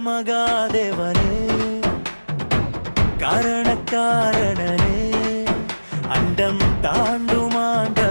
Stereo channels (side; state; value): both; inverted; correlation -1.00